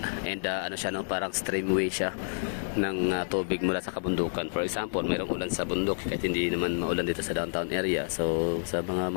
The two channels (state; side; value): silent; right; digital silence